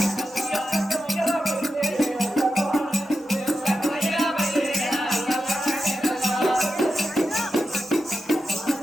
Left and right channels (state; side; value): normal; both; correlation 0.89